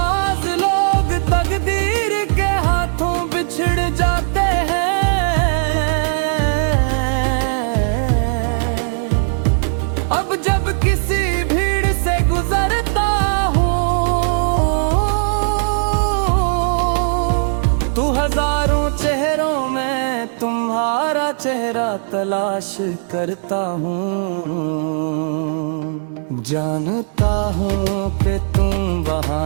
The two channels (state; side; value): silent; left; digital silence